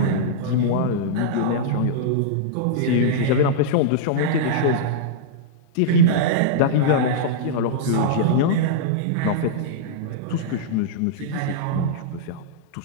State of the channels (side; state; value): both; different; correlation -0.03